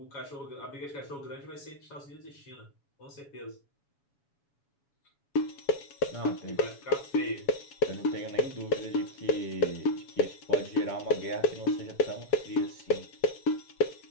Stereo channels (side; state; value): right; late; 7.1 ms